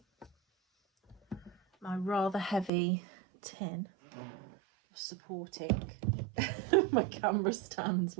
My rather heavy tin of supporting my camera stand's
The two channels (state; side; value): drops out; left; at 2.7 s